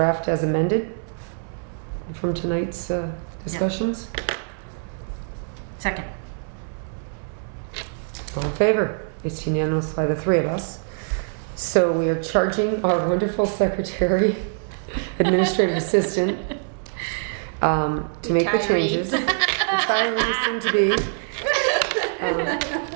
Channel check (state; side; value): silent; left; 63 dB below the other